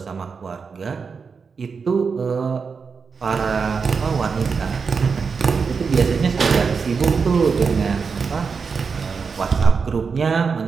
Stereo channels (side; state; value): left; quieter; 5.4 dB